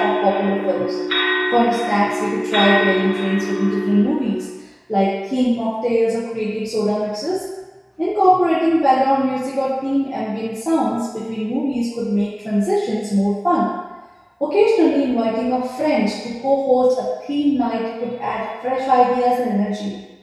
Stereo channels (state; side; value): identical; both; correlation 1.00